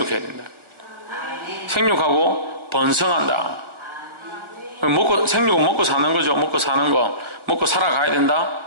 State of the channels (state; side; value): late; left; 1.5 ms